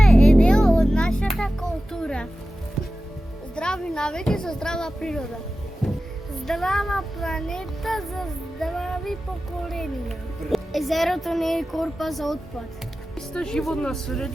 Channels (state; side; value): normal; both; correlation 0.94